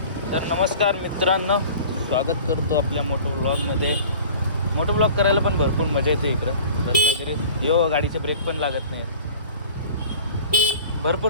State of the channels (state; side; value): inverted; both; correlation -0.43